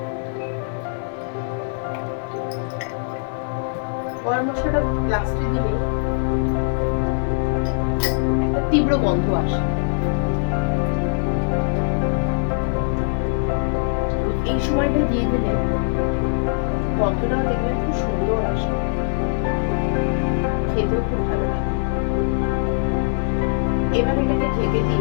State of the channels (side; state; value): right; silent; 63 dB below the other